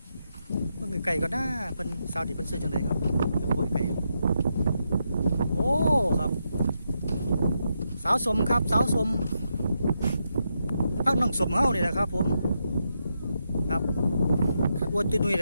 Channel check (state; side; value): inverted; both; correlation -0.83